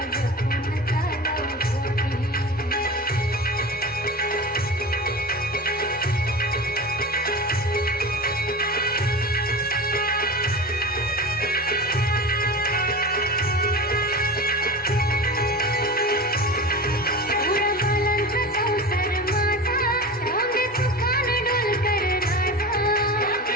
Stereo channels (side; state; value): both; normal; correlation 0.30